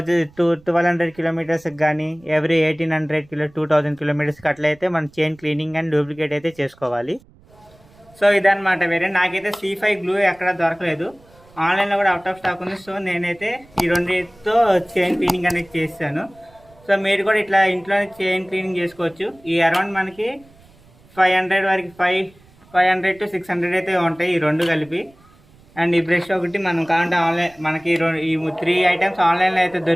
కిలోమీటర్స్కి కానీ ఎవ్రీ 2000 కిలోమీటర్స్కి అట్లయితే మనం చైన్ క్లీనింగ్ అండ్ లూబ్లికేట్ అయితే చేసుకోవాలి. సో ఇదన్నమాట. వేరే నాకైతే C5 గ్లూ ఎక్కడ దొరకలేదు, ఆన్లైన్లో కూడా అవుట్ ఆఫ్ స్టాక్ ఉంది. సో నేనైతే ఈ రెండింటితో చైన్ క్లీనింగ్ అనేది చేస్తాను. సో మీరు కూడా ఇట్లా ఇంట్లోనే చైన్ క్లీనింగ్ చేసుకోవచ్చు. ఈ అరౌండ్ మనకి 500 వరకు 500 to 600 అయితే ఉంటాయి ఈ రెండు కలిపి. అండ్ ఈ బ్రష్ ఒకటి మనం కావాలంటే ఆన్లైన్ మనకి ఈ 3 ఐటమ్స్ ఆన్లైన్లో అయితే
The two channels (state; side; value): noise; right; rumble, 28 dB below the sound